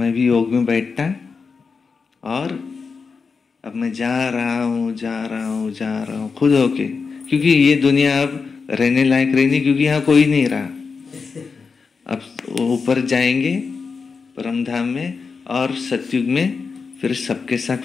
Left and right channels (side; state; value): right; quieter; 5.0 dB